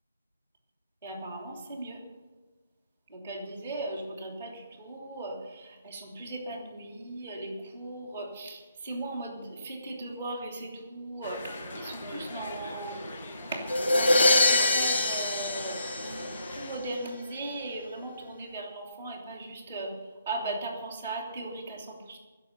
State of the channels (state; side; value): inverted; both; correlation -0.74